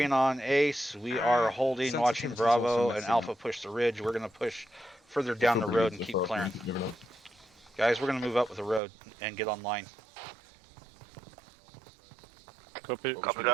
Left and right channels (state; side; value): drops out; left; at 8.8 s